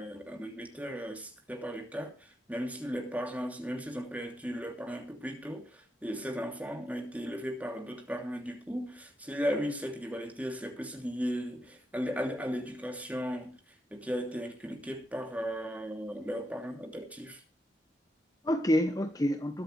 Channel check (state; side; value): normal; both; correlation 0.83